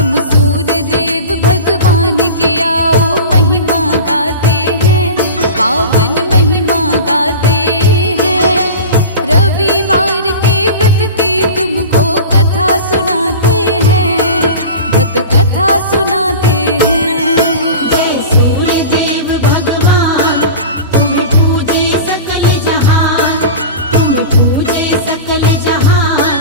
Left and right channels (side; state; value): both; inverted; correlation -0.32